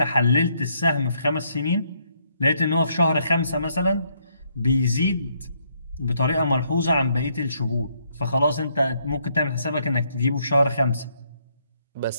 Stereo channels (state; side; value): inverted; both; correlation -0.72